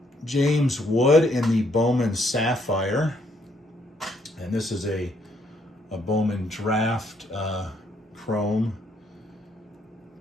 James Wood in the Bowman Sapphire. And this is a Bowman Draft Chrome.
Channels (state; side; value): normal; both; correlation 0.70